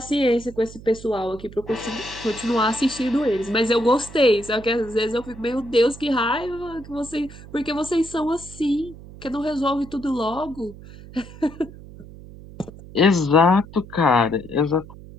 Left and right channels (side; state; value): right; noise; hum, 17 dB below the sound